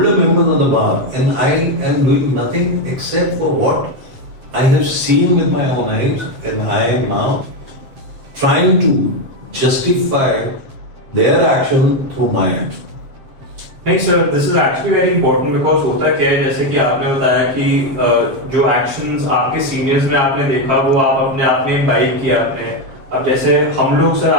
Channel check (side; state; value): left; late; 7.6 ms